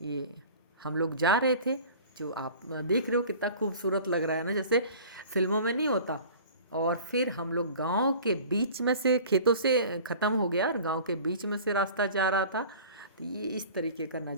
हम लोग जा रहे थे। जो आप देख रहे हो कितना खूबसूरत लग रहा है ना, जैसे फिल्मों में नहीं होता। और फिर हम लोग गांव के बीच में से, खेतों से ख़त्म हो गया और गांव के बीच में से रास्ता जा रहा था। तो ये इस तरीके का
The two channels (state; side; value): inverted; both; correlation -0.43